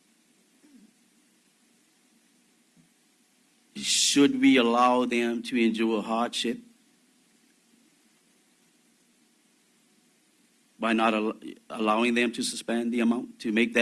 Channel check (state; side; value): identical; both; correlation 1.00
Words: Should we allow them to endure hardship by not allowing them to suspend the amount, to make